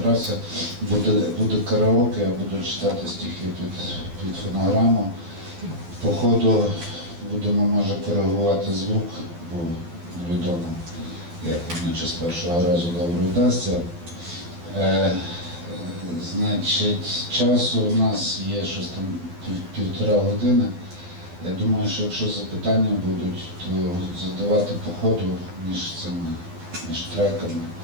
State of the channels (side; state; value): left; late; 12 ms